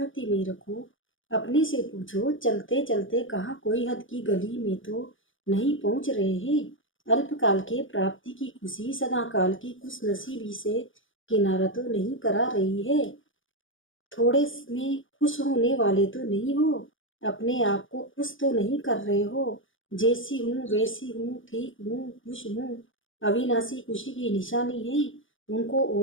में रखो। अपने से पूछो, चलते चलते कहाँ कोई हद की गली में तो नहीं पहुंच रहे हैं। अल्पकाल के प्राप्ति की खुशी सदा काल की खुशनसीबी से किनारा तो नहीं करा रही है। थोड़े में खुश होने वाले तो नहीं हो, अपने आप को खुश तो नहीं कर रहे हो। जैसी हूँ वैसी हूँ, ठीक हूँ, खुश हूँ, अविनाशी खुशी की निशानी है। उनको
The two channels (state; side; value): late; right; 0.57 ms